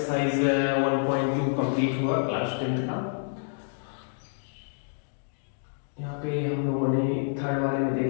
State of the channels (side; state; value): right; silent; digital silence